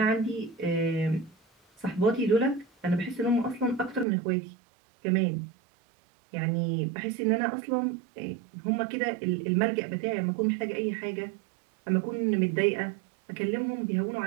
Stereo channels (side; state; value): left; drops out; at 4.0 s